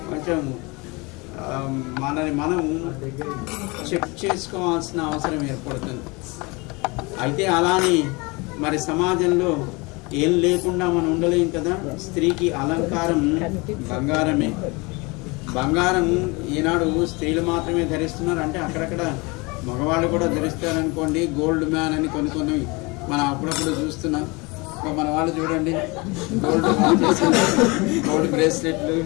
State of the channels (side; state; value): right; quieter; 26.6 dB